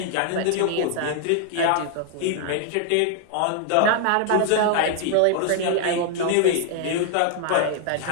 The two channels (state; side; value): different; both; correlation 0.00